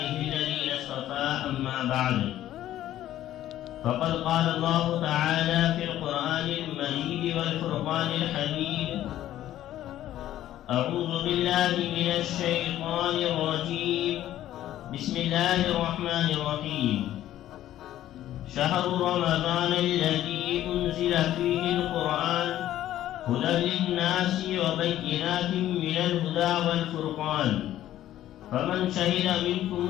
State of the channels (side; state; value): right; quieter; 13.0 dB